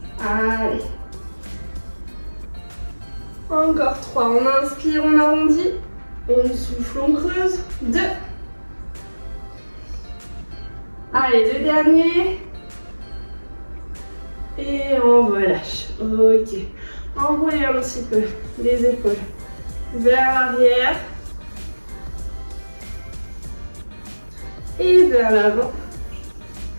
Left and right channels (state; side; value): inverted; both; correlation -1.00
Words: Allez. Encore 3, on inspire, on arrondit, on souffle, on creuse, 2. Allez, le dernier. Et on relâche. Ok. Enroulez un petit peu les épaules vers l'arrière. Et vers l'avant.